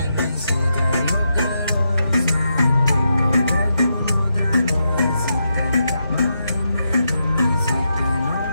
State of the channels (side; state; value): both; inverted; correlation -0.84